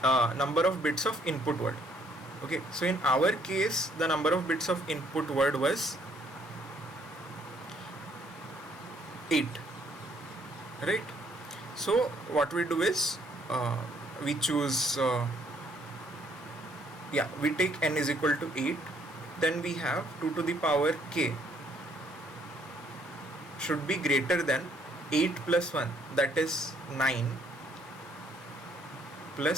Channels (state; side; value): normal; both; correlation 0.66